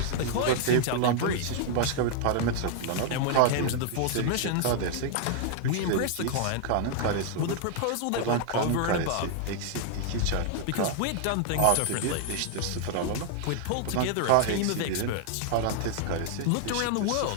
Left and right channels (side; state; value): both; different; correlation 0.00